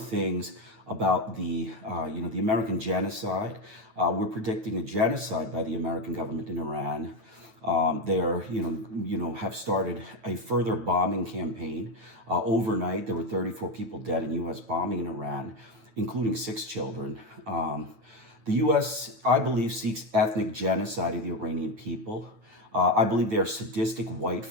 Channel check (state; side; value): late; left; 9.0 ms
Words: about the American genocide. We're predicting a genocide by the American government in Iran. They are, have started a further bombing campaign. Overnight, there were 34 people dead in U.S. bombing in Iran, including 6 children. The U.S., I believe, seeks ethnic genocide of the Iranian people. I believe they are sadistic white